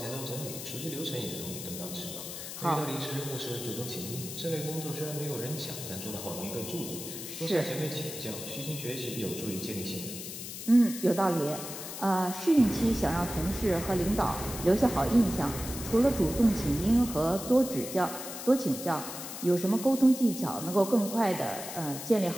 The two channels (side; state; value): left; noise; hiss, 9 dB below the sound